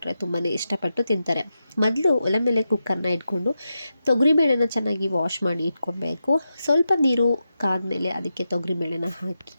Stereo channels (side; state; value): both; inverted; correlation -0.88